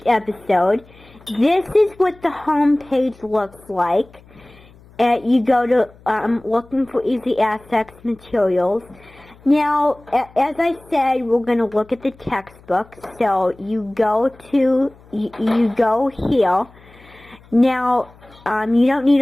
episode. This is what the home page looks like. You go to looking for Easy Access materials. Now, as I said, we're going to look at the textbook. So you go here. Now, you don't need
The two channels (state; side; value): noise; left; hum, 26 dB below the sound